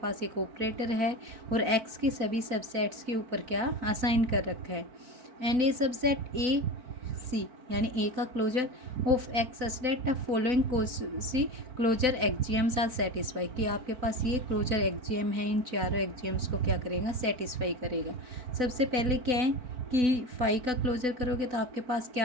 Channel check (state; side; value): late; left; 4.0 ms